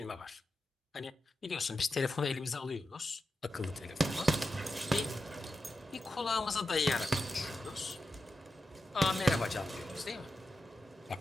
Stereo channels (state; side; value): normal; both; correlation 0.90